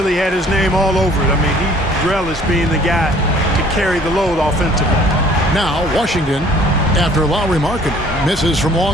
had his name all over it. I mean, he relished being the guy to carry the load offensively. Now, Washington, after Lauri Markkanen misses from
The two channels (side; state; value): both; normal; correlation 0.55